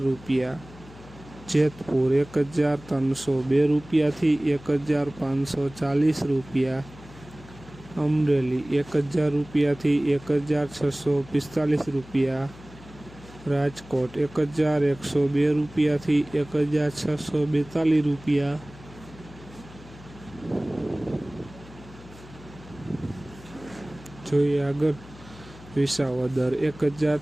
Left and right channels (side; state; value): left; noise; hum, 19 dB below the sound